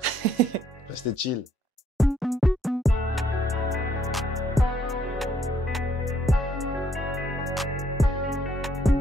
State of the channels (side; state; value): both; normal; correlation 0.69